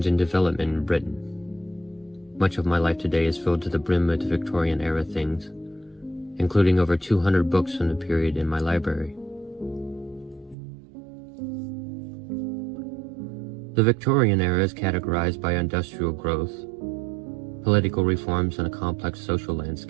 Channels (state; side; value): drops out; left; at 10.6 s